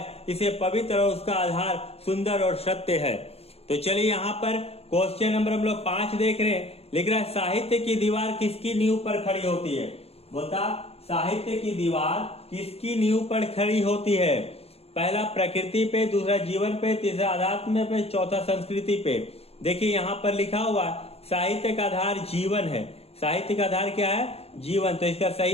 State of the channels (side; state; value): right; late; 0.29 ms